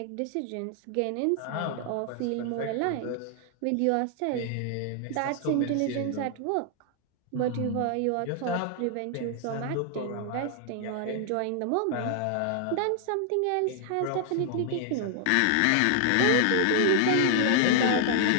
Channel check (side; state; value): both; different; correlation 0.00